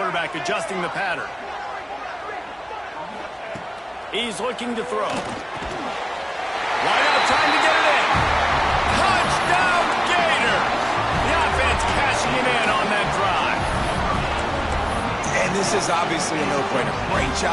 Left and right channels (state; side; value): identical; both; correlation 1.00